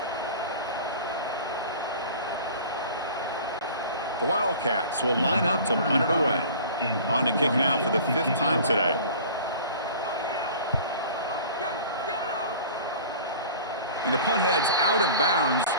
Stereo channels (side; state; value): both; inverted; correlation -0.42